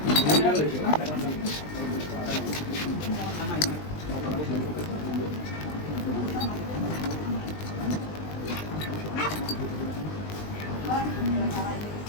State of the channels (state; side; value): late; right; 20 ms